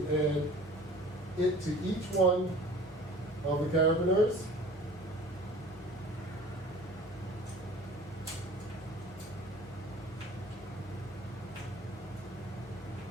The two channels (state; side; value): normal; both; correlation 0.45